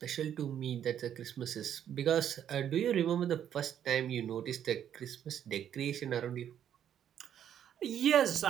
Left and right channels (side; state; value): left; quieter; 9.8 dB